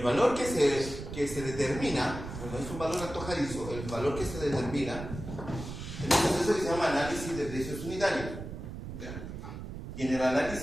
valor que se determina, no es un valor antojadizo, el valor que se determina en un proceso que se llama análisis de precios unitarios. ¿Ya? Y en el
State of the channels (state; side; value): noise; right; rumble, 9 dB below the sound